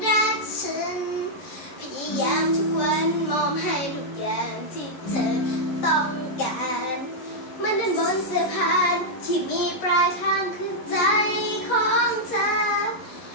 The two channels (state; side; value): late; right; 11 ms